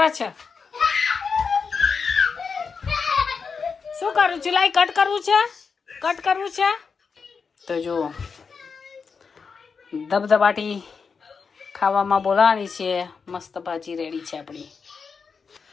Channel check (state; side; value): quieter; right; 5.4 dB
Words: છે. શું કરું છું? લાઈ કટ કરવું છે, કટ કરવું છે. તો જો ધબધબાટી ખાવામાં બોલાવાની છે. મસ્ત ભાજી રેડી છે આપણી.